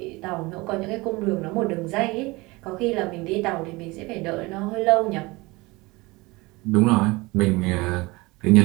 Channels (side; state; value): left; quieter; 23.1 dB